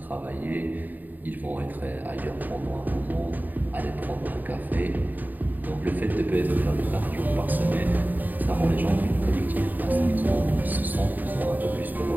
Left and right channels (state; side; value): late; left; 0.086 ms